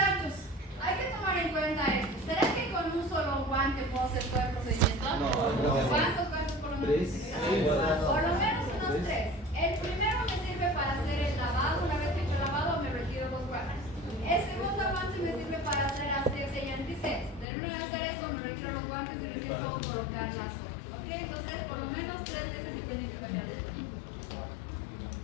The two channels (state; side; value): drops out; right; at 17.4 s